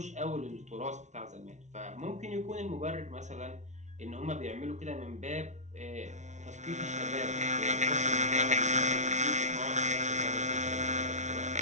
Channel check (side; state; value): left; late; 0.34 ms